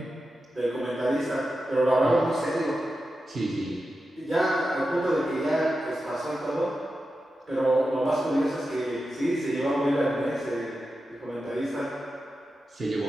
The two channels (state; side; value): normal; both; correlation 0.91